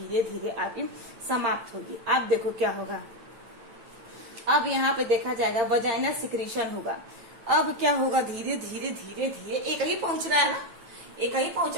धीरे आपकी समाप्त होगी। अब देखो क्या होगा, अब यहाँ पे देखा जाएगा वजाइनल सिक्रीशन होगा। अब क्या होगा, धीरे धीरे धीरे धीरे एक ही पहुंच रहा है ना, एक ही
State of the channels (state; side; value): late; left; 8.9 ms